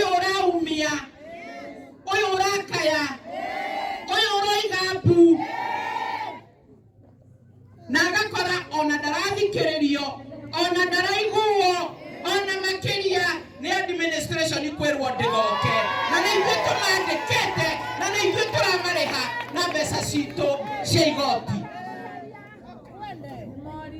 uraumia, uyu urakaya, uyu uroiga mbu na agakora ona ndarathikiririo ona ndaraiguo ona makiria ni administration ikwirwo ndigoke na ni ithuĩ tũmandĩkĩte na ni ithuĩ tũramariha na mbeca citũ cia igoti.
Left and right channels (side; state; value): both; identical; correlation 1.00